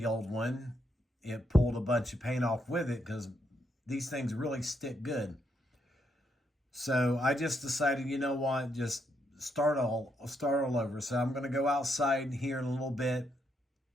old one, it pulled a bunch of paint off with it because these things really stick good. So I just decided, you know what, just start all over. So I'm going to go outside here in a little bit,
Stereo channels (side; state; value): both; normal; correlation 0.78